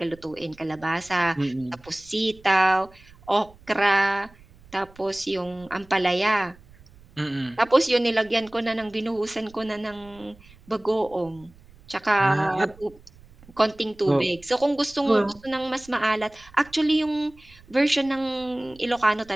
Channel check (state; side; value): noise; right; rumble, 25 dB below the sound